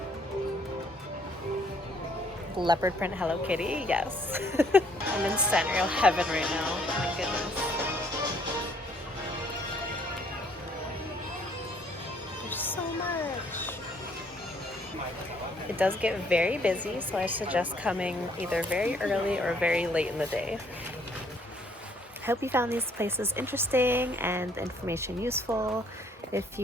Leopard print Hello Kitty, yes. I'm in Sanrio heaven right now. Oh my goodness. There's so much. It does get very busy, so I suggest coming either very early or very late in the day. I hope you found these places interesting and the information useful. If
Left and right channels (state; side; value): normal; both; correlation 0.64